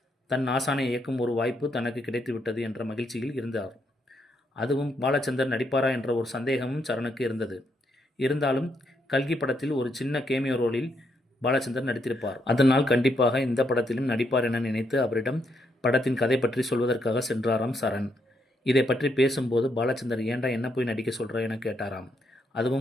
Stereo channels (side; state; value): both; normal; correlation 0.77